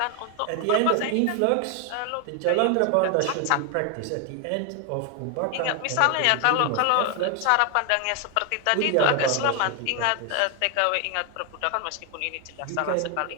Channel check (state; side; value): different; both; correlation 0.01